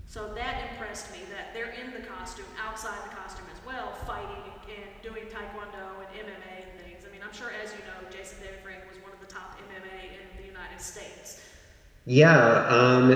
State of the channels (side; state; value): both; identical; correlation 1.00